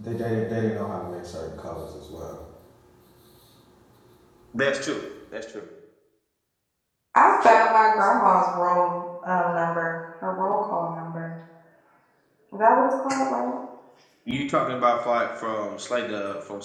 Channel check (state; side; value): identical; both; correlation 1.00